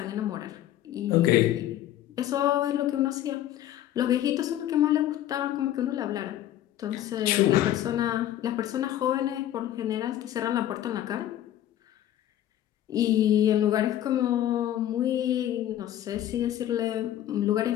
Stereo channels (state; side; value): quieter; right; 12.3 dB